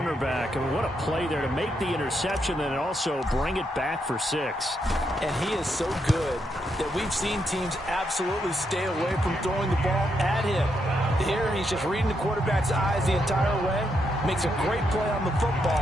I mean, what a play there to make the interception and also bring it back for 6. And he is so good that we've seen teams absolutely stay away from throwing the ball at him. Here, he's just reading the quarterback's eyes the entire way, makes a great play on the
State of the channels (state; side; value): normal; both; correlation 0.80